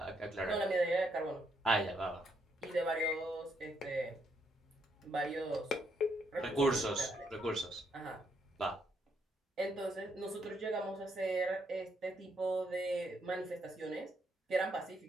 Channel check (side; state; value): both; normal; correlation 0.75